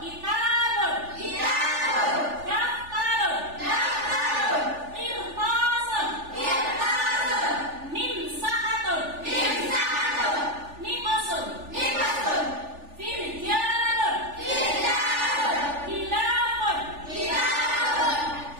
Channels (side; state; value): left; late; 3.4 ms